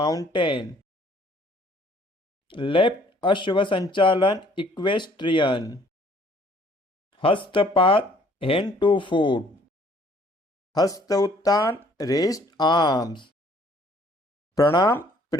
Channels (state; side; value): normal; both; correlation 0.59